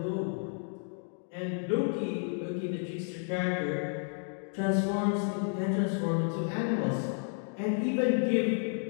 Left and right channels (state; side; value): silent; right; 57 dB below the other